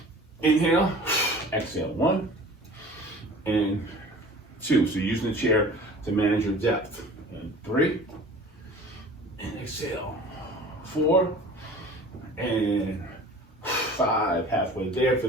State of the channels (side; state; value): both; normal; correlation 0.44